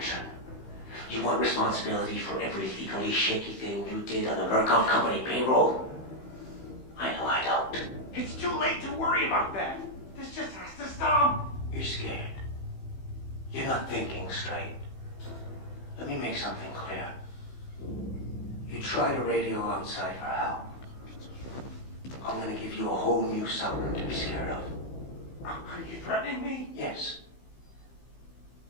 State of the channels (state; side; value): late; right; 15 ms